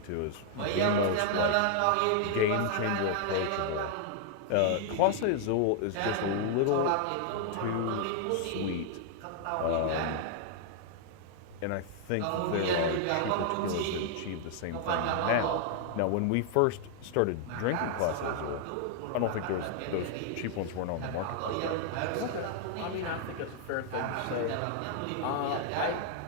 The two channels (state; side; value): different; both; correlation 0.00